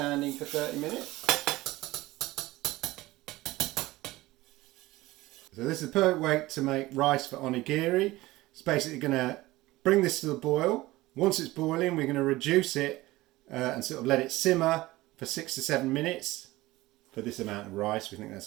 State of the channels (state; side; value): quieter; left; 18.6 dB